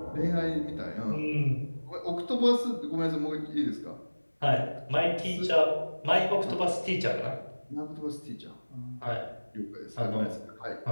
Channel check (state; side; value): inverted; both; correlation -1.00